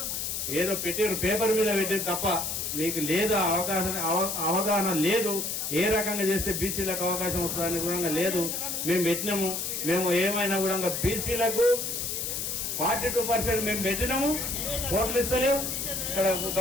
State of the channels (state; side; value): noise; left; hiss, 2 dB below the sound